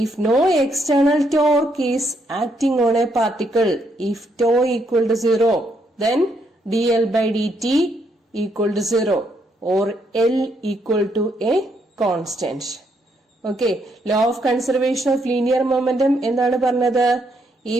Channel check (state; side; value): normal; both; correlation 0.75